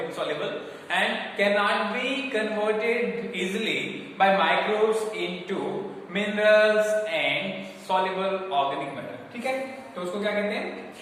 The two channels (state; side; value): identical; both; correlation 1.00